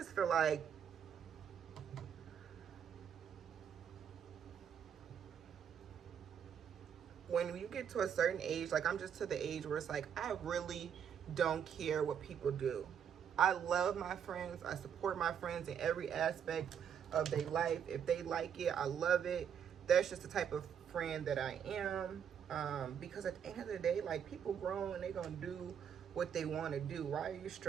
feel like when you get to a certain age, like I'm just to the age where it's like, I really don't care what people do. I love my friends. I support my friends in every aspect of their life. If they like it, I love it. That's just the type of friend that I am. Because at the end of the day, like, people grow and they're gonna do what they want to do. Why are you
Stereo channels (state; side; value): quieter; left; 8.1 dB